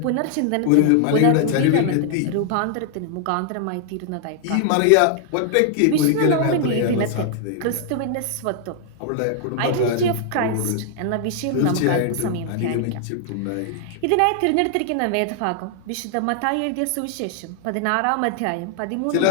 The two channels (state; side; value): different; both; correlation 0.00